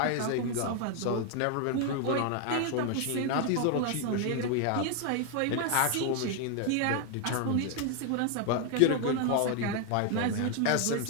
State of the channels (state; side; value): different; both; correlation 0.01